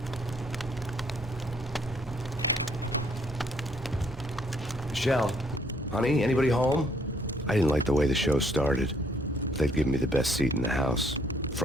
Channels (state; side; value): normal; both; correlation 0.67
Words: Michelle, honey, anybody home? I didn't like the way the show started. They'd give me the best seat in the house,